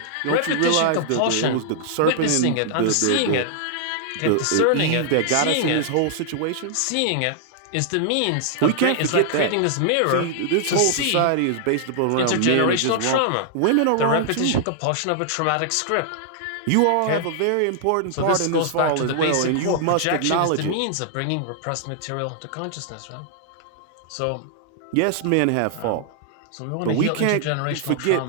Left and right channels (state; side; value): different; both; correlation -0.01